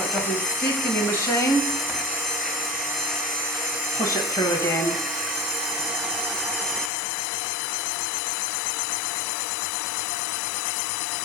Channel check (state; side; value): drops out; right; at 6.9 s